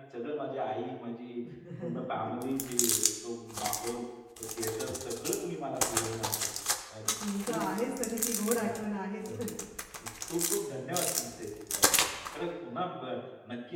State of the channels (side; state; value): both; identical; correlation 1.00